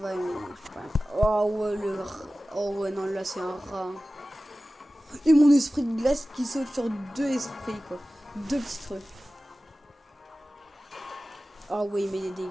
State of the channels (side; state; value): both; normal; correlation 0.96